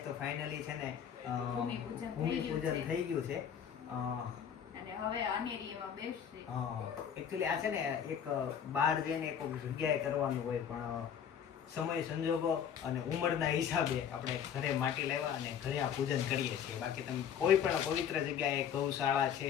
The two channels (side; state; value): right; quieter; 8.3 dB